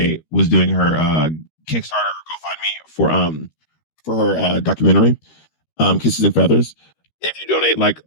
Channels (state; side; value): late; right; 13 ms